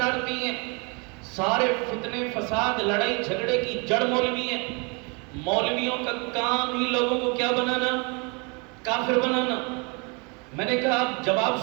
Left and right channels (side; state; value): left; quieter; 31.9 dB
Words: ہیں، سارے فتنے فساد لڑائی جھگڑے کی جڑ مولوی ہیں. مولویوں کا کام ہی لوگوں کو کیا بنانا؟ کافر بنانا. میں نے کہا آپ جواب